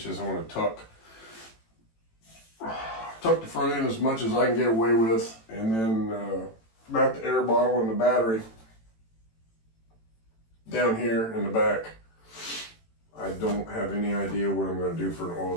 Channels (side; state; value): right; late; 18 ms